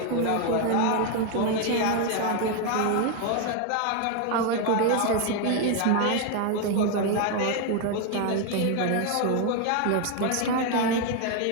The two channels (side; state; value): both; different; correlation 0.01